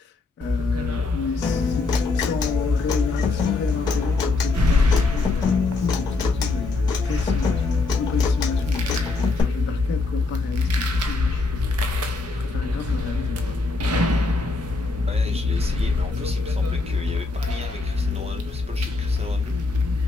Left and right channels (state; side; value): quieter; right; 3.6 dB